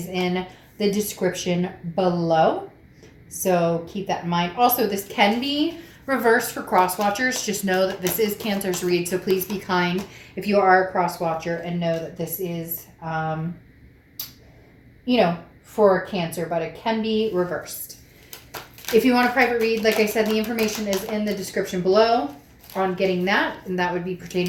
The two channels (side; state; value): both; identical; correlation 1.00